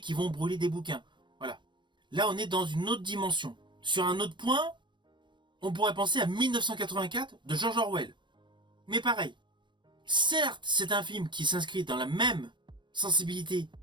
qui vont brûler des bouquins. Voilà. Là, on est dans une autre dimension. Sur un autre point, on pourrait penser à 1984 de George Orwell. Mais pareil. Certes, c'est un film qui s'inscrit dans la même sensibilité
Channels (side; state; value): left; late; 0.23 ms